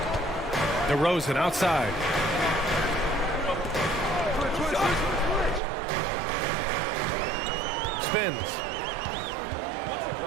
DeRozan outside. Spins.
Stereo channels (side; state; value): left; drops out; at 5.6 s